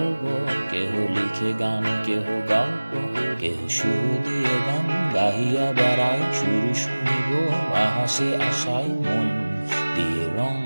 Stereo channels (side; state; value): both; inverted; correlation -1.00